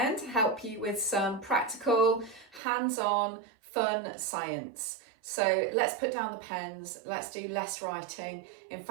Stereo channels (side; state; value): left; drops out; at 2.6 s